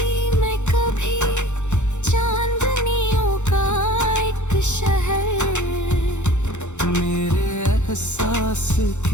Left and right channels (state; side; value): late; right; 0.84 ms